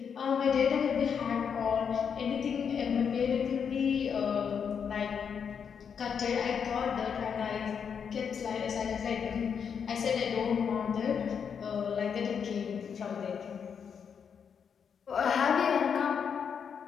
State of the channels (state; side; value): quieter; right; 7.0 dB